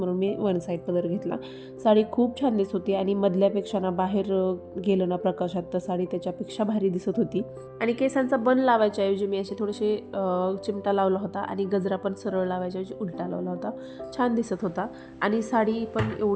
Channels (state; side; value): identical; both; correlation 1.00